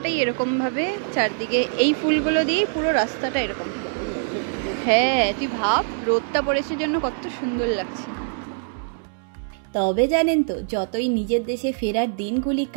এরকম ভাবে চারদিকে এই ফুলগুলো দিয়ে পুরো রাস্তাটা এরকম। হ্যাঁ তুই ভাব, রোদটা পড়েছে জন্য কত সুন্দর লাগছে। তবে জানেন তো, যতই নিজের দেশে ফেরার দিনগুলি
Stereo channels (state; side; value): silent; left; 63 dB below the other